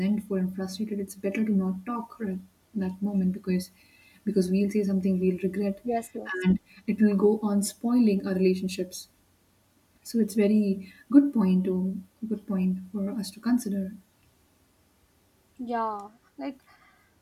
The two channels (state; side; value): identical; both; correlation 1.00